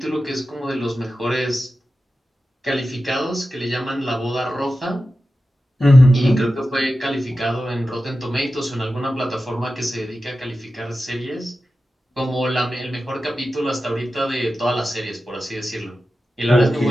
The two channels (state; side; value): normal; both; correlation 0.93